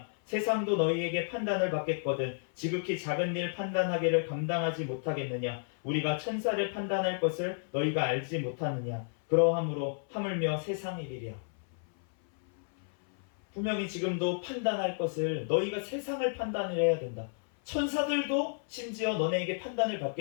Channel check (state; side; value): silent; right; 57 dB below the other